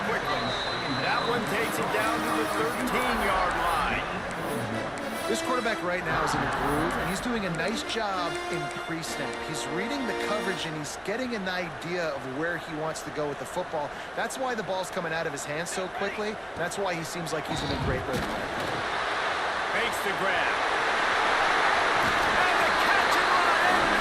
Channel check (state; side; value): identical; both; correlation 1.00